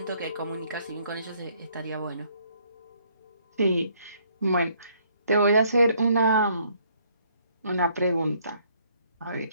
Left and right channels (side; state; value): both; inverted; correlation -0.66